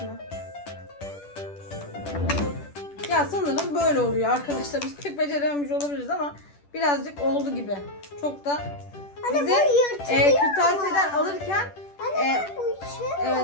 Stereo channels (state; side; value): late; right; 10 ms